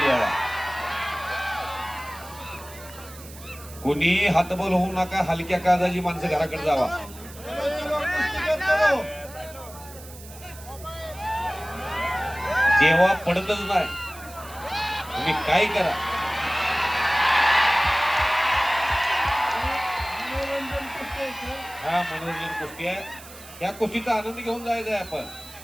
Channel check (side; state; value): right; noise; hiss, 18 dB below the sound